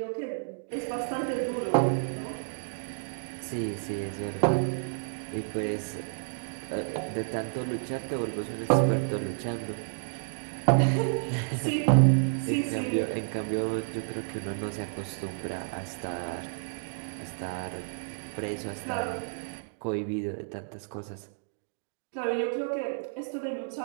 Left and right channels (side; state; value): left; silent; digital silence